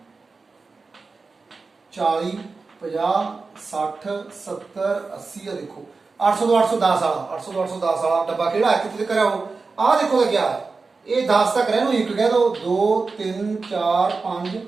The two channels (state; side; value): quieter; left; 4.2 dB